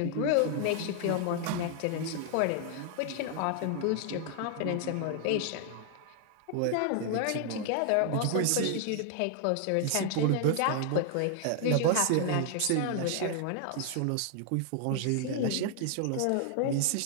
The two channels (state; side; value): different; both; correlation 0.00